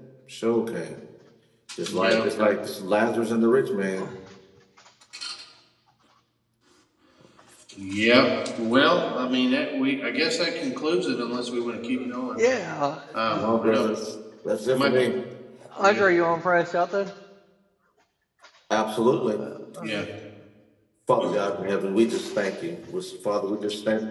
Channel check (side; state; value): both; identical; correlation 1.00